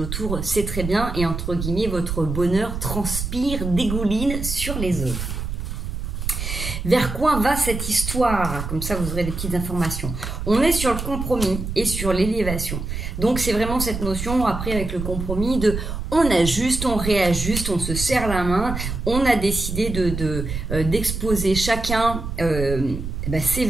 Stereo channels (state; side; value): noise; right; rumble, 5 dB below the sound